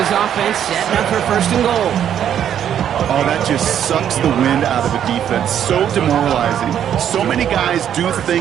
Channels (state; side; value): quieter; left; 9.7 dB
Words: offense setting up for first and goal. Oh, that just sucks the wind out of a defense. So demoralizing. So many guys do